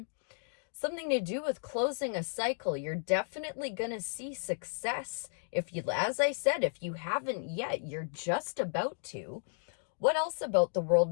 Something to do with closing a cycle. You're definitely going to see success. If you, as I said, if you haven't yet, you're just about to. What else about the world?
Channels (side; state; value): right; silent; digital silence